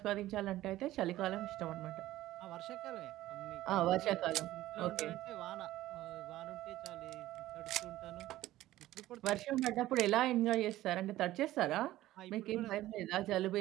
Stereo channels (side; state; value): left; quieter; 15.3 dB